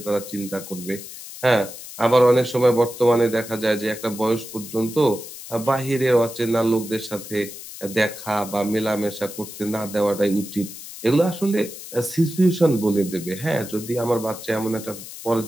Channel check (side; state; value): left; noise; hiss, 13 dB below the sound